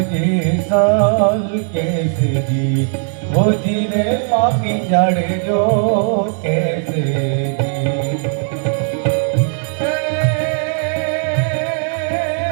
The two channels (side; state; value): left; silent; 56 dB below the other